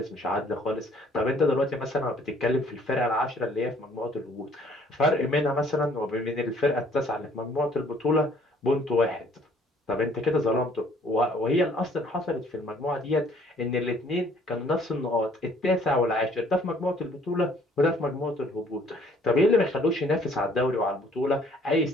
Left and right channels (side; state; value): both; normal; correlation 0.59